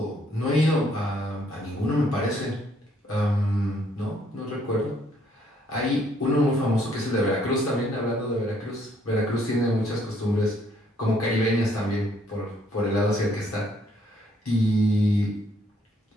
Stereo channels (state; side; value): normal; both; correlation 0.67